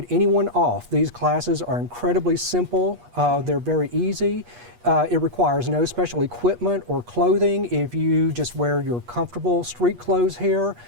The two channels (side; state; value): left; late; 8.3 ms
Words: anyone off. These classes are incredibly simple, they're very easy. It requires no special equipment or clothing. If you just wear your comfortable street clothes here